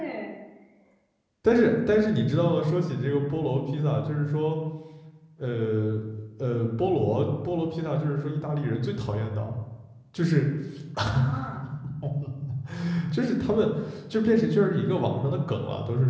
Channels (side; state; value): both; identical; correlation 1.00